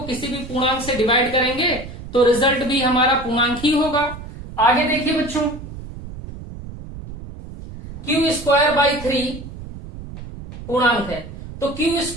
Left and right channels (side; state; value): right; noise; rumble, 12 dB below the sound